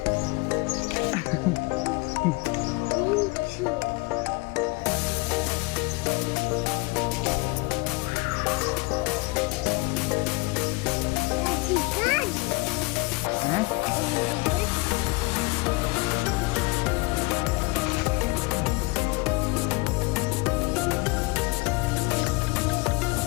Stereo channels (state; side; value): quieter; right; 25.6 dB